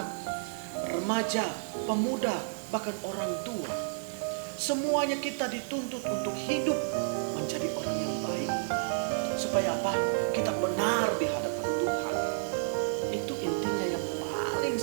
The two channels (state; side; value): silent; left; digital silence